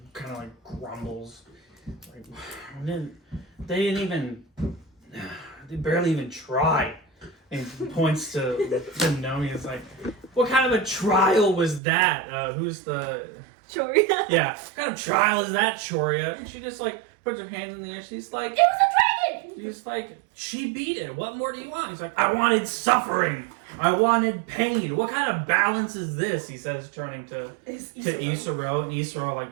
kind of like grumbles, like they barely even try, and he points to Nomi. It's like, what kind of a trial was that? Who's the Choria. yeah? What kind of trial is that, Choria? And she just like puts her hands in the air. She's like, It was a dragon! He's like, she beat it. What more do you want? He's like, I wanted suffering. I wanted pain. What kind of balance is this? He says, turning to Isaro, and Isaro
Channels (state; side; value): drops out; left; at 11.8 s